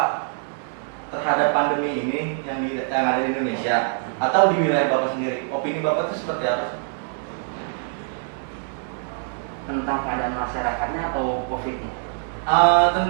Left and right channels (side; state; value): left; silent; digital silence